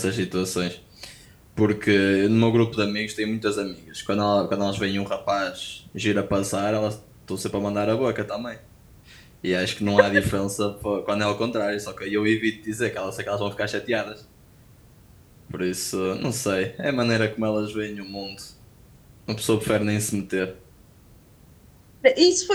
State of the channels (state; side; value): identical; both; correlation 1.00